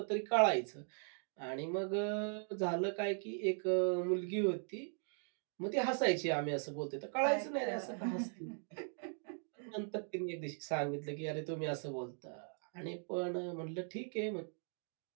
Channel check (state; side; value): silent; left; 51 dB below the other